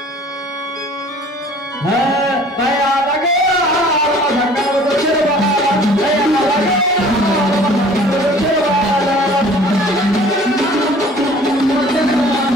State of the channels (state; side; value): normal; both; correlation 0.50